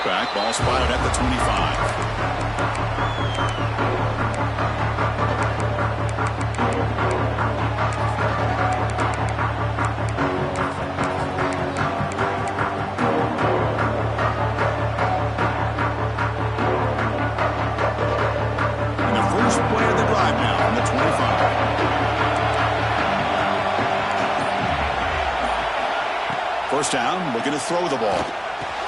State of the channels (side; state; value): both; identical; correlation 1.00